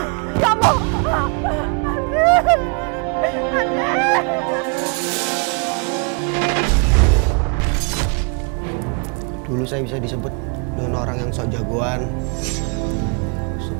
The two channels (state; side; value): quieter; left; 35.3 dB